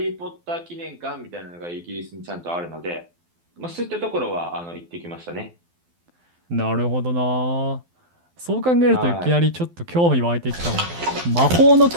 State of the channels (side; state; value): left; late; 12 ms